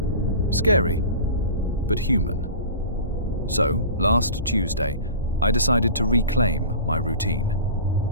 Scary, but human. So, last Tuesday, I decided to reclaim my routine.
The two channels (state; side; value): inverted; both; correlation -0.37